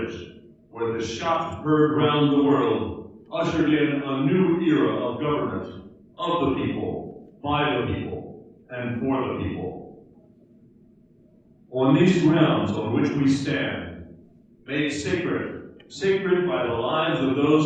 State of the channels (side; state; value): both; identical; correlation 1.00